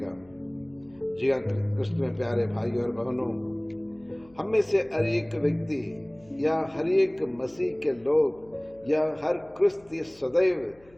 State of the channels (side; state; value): left; noise; hum, 28 dB below the sound